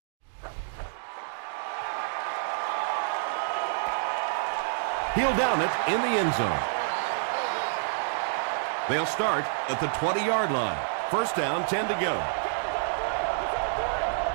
He'll down it in the end zone. They'll start at the 20-yard line. First down, 10 to go.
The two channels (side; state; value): left; silent; digital silence